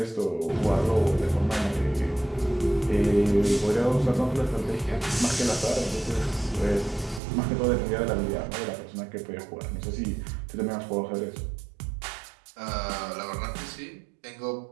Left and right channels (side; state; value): left; drops out; at 7.2 s